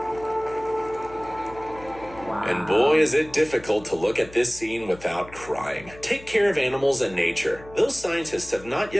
And boy, is it difficult to look at this scene without crying. Take care of animals and nature. Those scientists have not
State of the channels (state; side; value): noise; left; hum, 20 dB below the sound